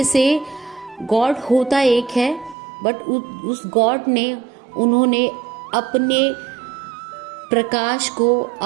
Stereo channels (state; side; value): drops out; left; at 2.6 s